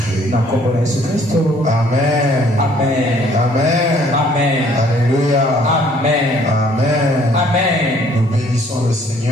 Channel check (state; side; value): normal; both; correlation 0.60